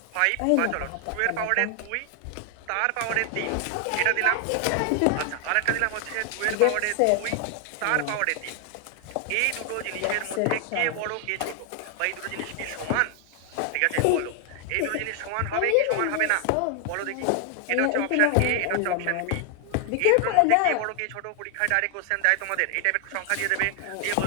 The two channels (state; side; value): different; both; correlation 0.00